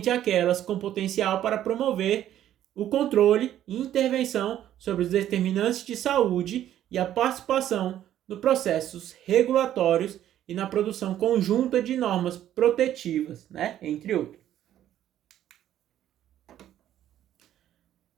aquelas com potencial para promover o controle e intervenção sobre os determinantes de saúde e a participação nos processos regulatórios e na produção conjunta de normas protetivas, né, entre outros.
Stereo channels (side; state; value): left; quieter; 11.7 dB